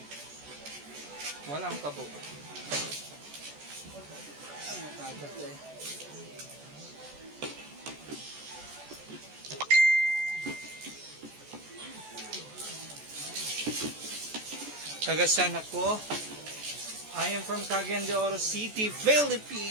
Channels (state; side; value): late; left; 14 ms